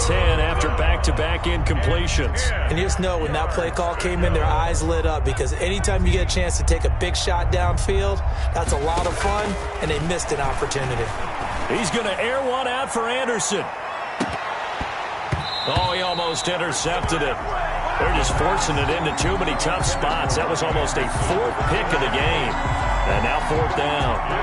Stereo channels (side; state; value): both; identical; correlation 1.00